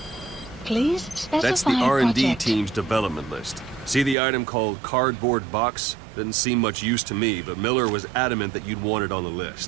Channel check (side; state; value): left; drops out; at 4.2 s